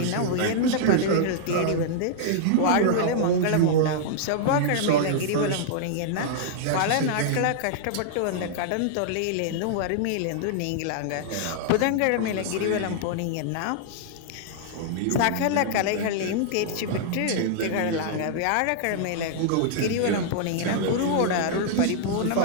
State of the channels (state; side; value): different; both; correlation -0.01